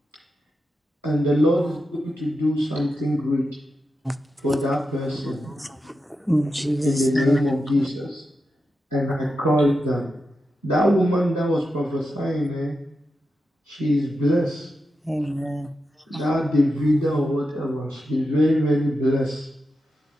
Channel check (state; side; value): normal; both; correlation 0.89